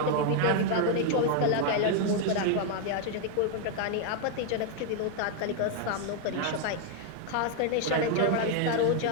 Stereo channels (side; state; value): both; different; correlation 0.00